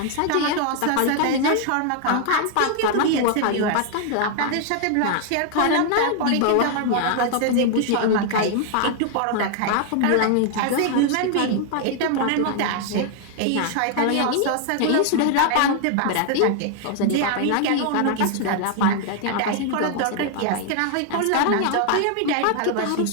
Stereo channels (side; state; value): both; different; correlation 0.00